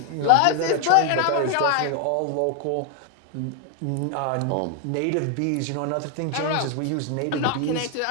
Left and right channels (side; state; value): both; different; correlation 0.00